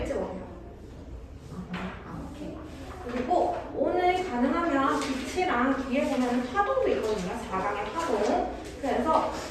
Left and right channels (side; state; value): both; identical; correlation 1.00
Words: 오세요. 오케이. 그리고 오늘 가능하면 빛이랑 뒤에 보면 파동도 있거든요. 4강의 파동. 그래서